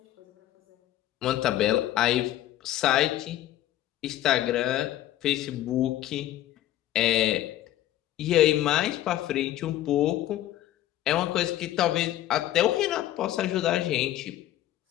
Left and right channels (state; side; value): quieter; right; 13.5 dB